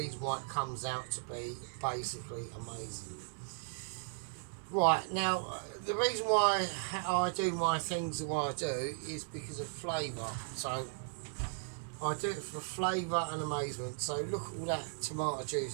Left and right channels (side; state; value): left; silent; digital silence